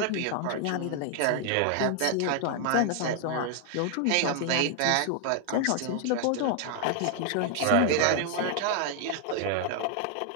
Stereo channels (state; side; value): different; both; correlation 0.00